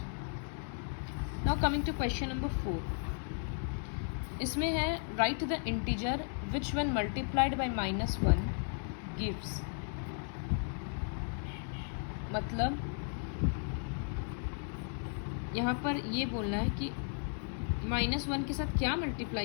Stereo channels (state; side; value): silent; right; 54 dB below the other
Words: Now coming to question number 4. इसमें है right the integer which when multiplied by -1 gives, मतलब यहाँ पर ये बोलना है कि -1 के साथ क्या